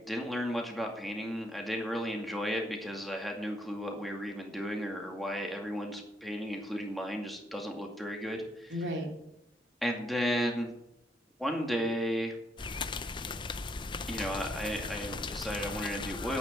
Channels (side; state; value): both; normal; correlation 0.72